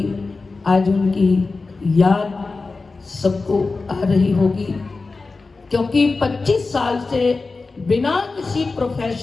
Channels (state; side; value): quieter; right; 3.9 dB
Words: आज उनकी याद सबको आ रही होगी, क्योंकि 25 साल से बिना किसी